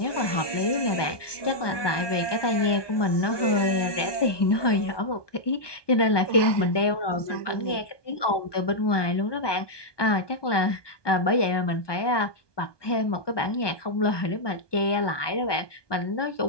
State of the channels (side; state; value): right; late; 1.2 ms